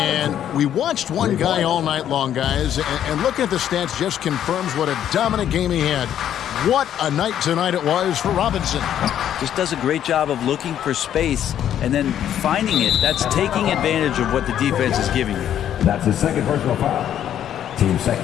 we watched one guy all night long, guys, and looking at the stats just confirms what a dominant game he had. What a night tonight it was for Robinson. Just does a great job of looking for space and then finding it. That's taking advantage of what the defense is giving you. That's his second personal foul. Team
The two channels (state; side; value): quieter; right; 10.4 dB